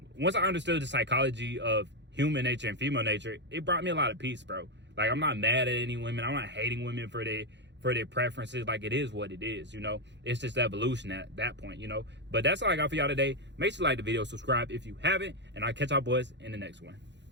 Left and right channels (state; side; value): late; left; 0.52 ms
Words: once I understood the psychology of human nature and female nature, it brought me a lot of peace, bro. Like, I'm not mad at any women. I'm not hating women for their preferences. Like, it is what it is, you know. It's just evolution at that point, you know. But that's all I got for y'all today. Make sure you like the video, subscribe if you haven't, and I'll catch y'all boys in the next one.